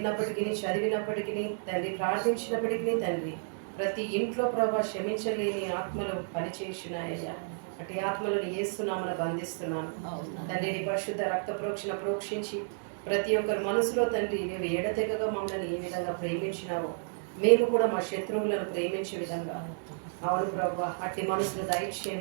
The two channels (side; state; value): left; silent; digital silence